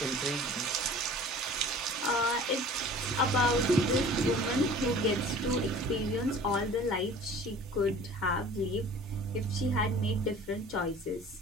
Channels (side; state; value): both; normal; correlation 0.45